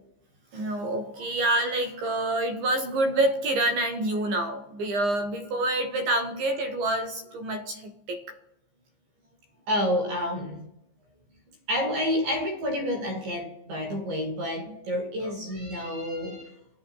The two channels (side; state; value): left; late; 15 ms